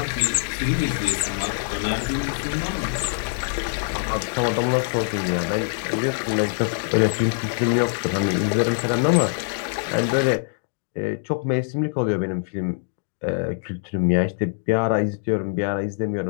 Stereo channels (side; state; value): right; silent; digital silence